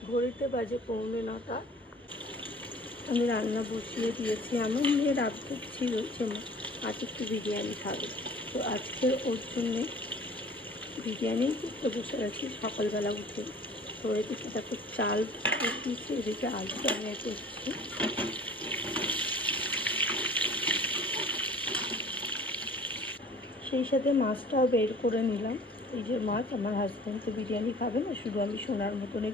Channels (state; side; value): normal; both; correlation 0.47